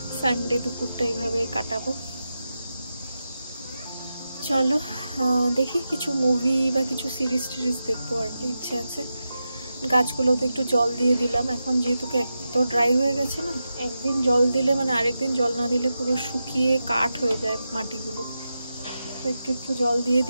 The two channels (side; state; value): both; inverted; correlation -0.90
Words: সানডে দুপুরটা এইভাবে কাটাবো। চলো দেখি কিছু মুভি বা কিছু সিরিজ টিরিজ দেখবো আর কি, ইচ্ছে আছে। গাছগুলোতে একটু জল দিয়ে দিলাম, এখন যেহেতু এত ড্রাই হয়ে গেছে না, একদিন জল দিলে মানে আরেকদিন জল না দিলে পুরো শুকিয়ে কাঠ হয়ে যায় মাটিগুলো। তো একটু একটু জল দিয়ে